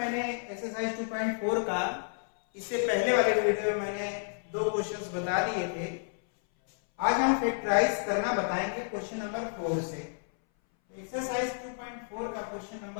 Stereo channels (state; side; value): silent; right; 57 dB below the other